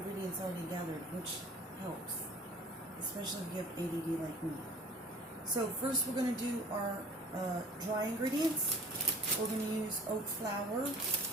already gathered, which helps, especially if you have ADD like me. So first we're going to do our dry ingredients. We're going to use oat flour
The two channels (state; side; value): normal; both; correlation 0.48